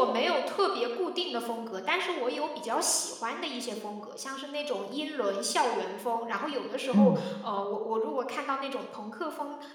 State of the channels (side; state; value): both; identical; correlation 1.00